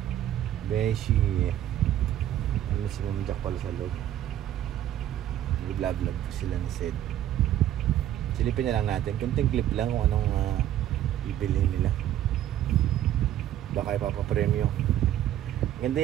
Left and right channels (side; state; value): left; quieter; 12.0 dB